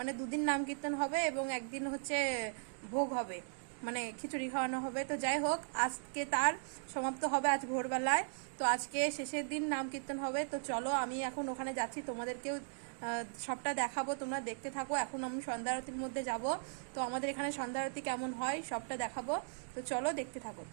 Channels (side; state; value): left; silent; digital silence